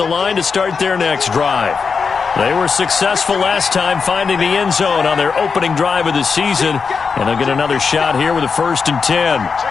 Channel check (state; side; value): quieter; right; 5.4 dB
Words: line to start their next drive. They were successful last time finding the end zone on their opening drive of the season, and they'll get another shot here with a 1st and 10.